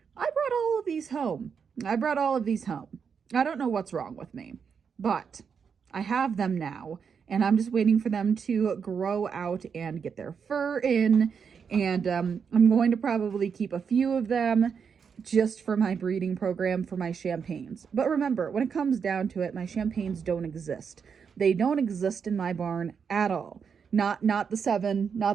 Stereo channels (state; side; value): quieter; left; 6.5 dB